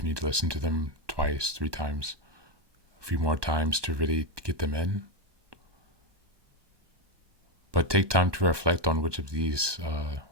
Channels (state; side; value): late; left; 1.2 ms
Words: need to listen to them 2, 3 times, a few more times to really get them in. But take time to reflect on which of these